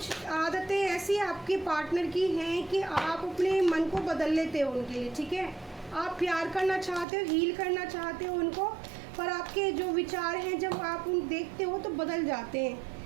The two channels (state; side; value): drops out; left; at 7.1 s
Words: आदतें ऐसी आपके पार्टनर की हैं कि आप अपने मन को बदल लेते हो उनके लिए, ठीक है। आप प्यार करना चाहते हो, हील करना चाहते हो उनको, पर आपके जो विचार हैं जब आप उन देखते हो तो बदल जाते हैं।